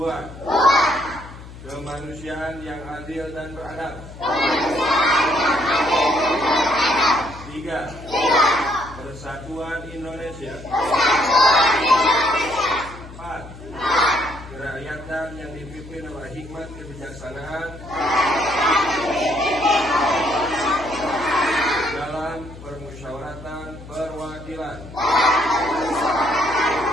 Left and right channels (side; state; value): left; noise; hum, 16 dB below the sound